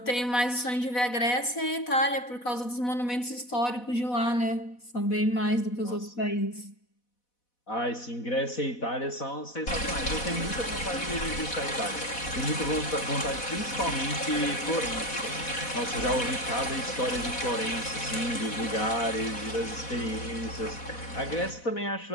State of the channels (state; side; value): late; right; 4.1 ms